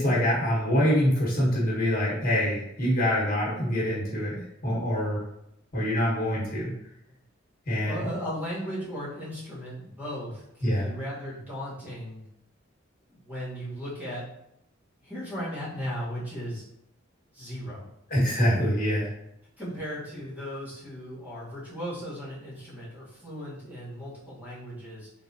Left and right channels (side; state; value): both; normal; correlation 0.64